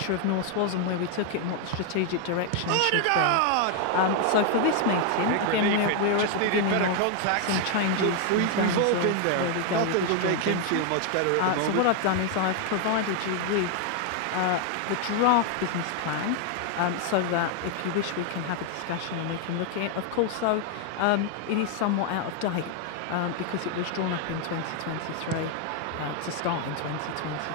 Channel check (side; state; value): both; different; correlation 0.00